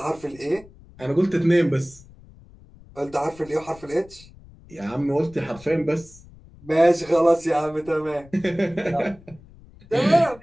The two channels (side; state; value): left; noise; rumble, 23 dB below the sound